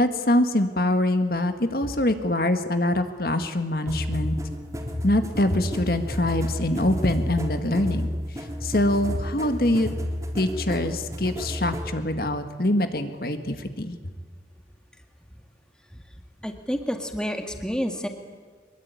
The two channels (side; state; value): both; normal; correlation 0.66